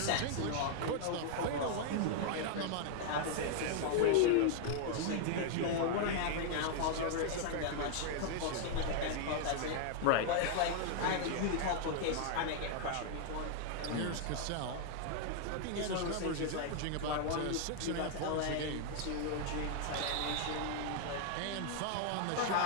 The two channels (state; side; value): different; both; correlation -0.01